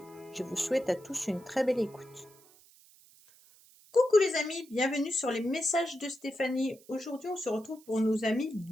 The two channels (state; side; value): noise; right; hiss, 26 dB below the sound